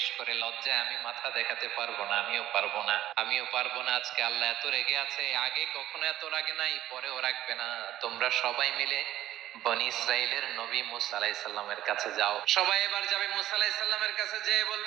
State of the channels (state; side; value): quieter; left; 13.4 dB